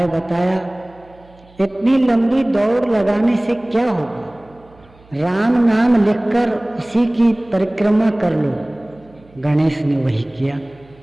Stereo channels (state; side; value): noise; right; hum, 28 dB below the sound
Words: बताया, इतनी लंबी दौड़ लगाने से क्या होगा? राम नाम लिखकर उसी की परिक्रमा कर लो। गणेश ने वही किया।